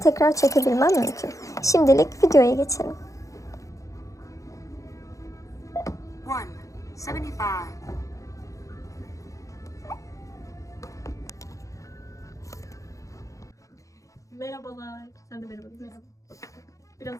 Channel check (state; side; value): late; right; 0.16 ms